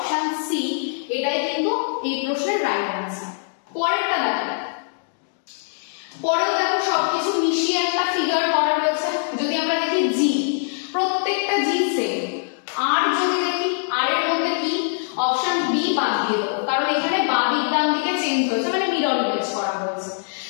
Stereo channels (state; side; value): silent; right; digital silence